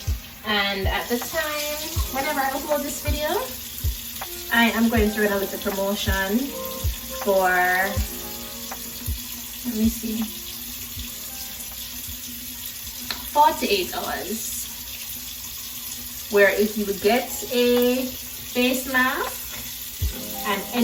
And at the time, whenever I upload this video, I am going to run a little promotion for, let me see, 48 hours. Where if you get a face mask and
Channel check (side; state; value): both; identical; correlation 1.00